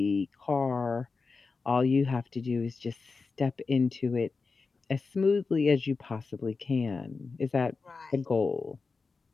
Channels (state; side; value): quieter; right; 4.4 dB